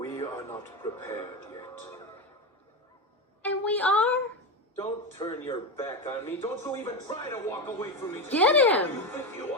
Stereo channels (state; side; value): normal; both; correlation 0.15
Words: are not prepared yet. And we are? Don't turn your back on me. Don't you even try to walk away from me. Get him! You think you